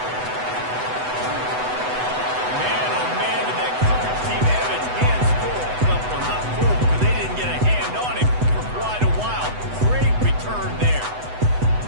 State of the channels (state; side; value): late; left; 8.0 ms